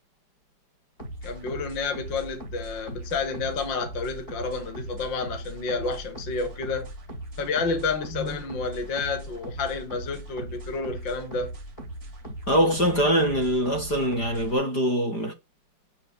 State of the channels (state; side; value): late; right; 4.9 ms